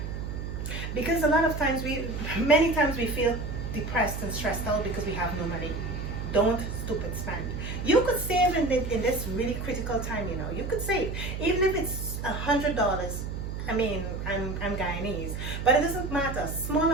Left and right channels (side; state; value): right; noise; hum, 5 dB below the sound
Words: Because many times we feel depressed and stressed out because we have no money. Don't stupid spend. You could save in this really critical time. You could save, even if it's $100. I mean, I'm Guyanese, but it doesn't matter. Small